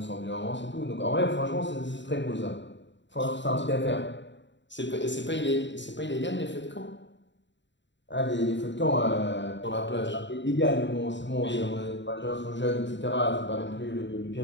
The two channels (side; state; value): right; late; 0.53 ms